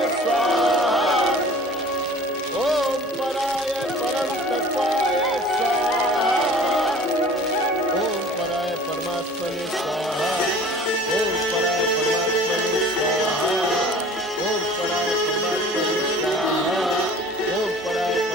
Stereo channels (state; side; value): normal; both; correlation 0.46